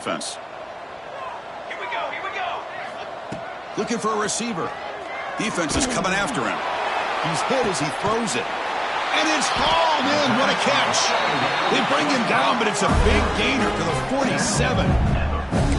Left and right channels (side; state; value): both; identical; correlation 1.00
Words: Here we go. Looking for a receiver. Defense is coming after him. He's hit as he throws it. And it's hauled in. What a catch. They bring him down, but it's a big gainer to the 47.